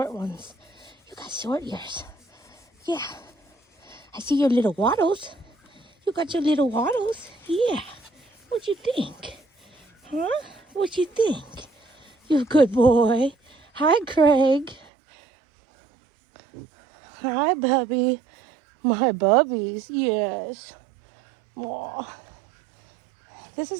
ones. You got short ears. Yeah. I see your little waddles. You got your little waddles. Yeah. What you think? Huh? What you think? You're a good boy. Hi, Craig. Hi, Bubby. My bubbies, yes. Aw. This is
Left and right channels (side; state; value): left; drops out; at 14.9 s